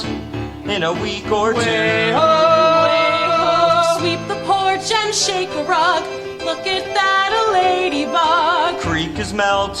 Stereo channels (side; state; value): both; identical; correlation 1.00